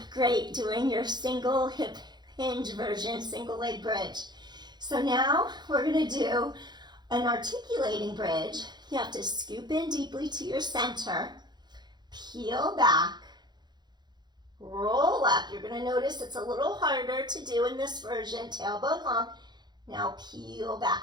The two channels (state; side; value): late; left; 0.21 ms